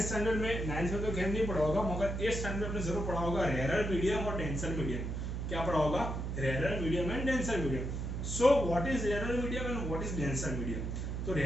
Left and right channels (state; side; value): noise; right; hum, 3 dB below the sound